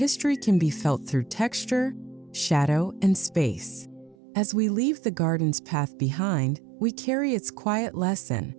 can be felt through texture, shadow, and space. As we leave the garden's path behind, we carry its quiet lesson:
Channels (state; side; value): drops out; left; at 4.2 s